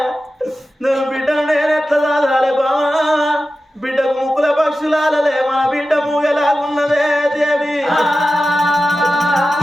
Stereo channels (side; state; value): both; normal; correlation 0.93